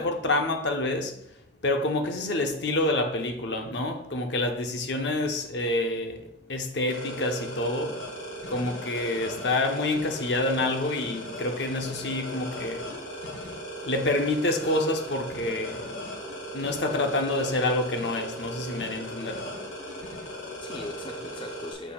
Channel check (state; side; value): normal; both; correlation 0.16